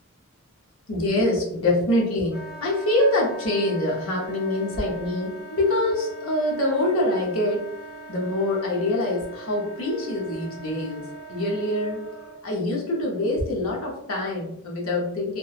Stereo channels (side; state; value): both; normal; correlation 0.06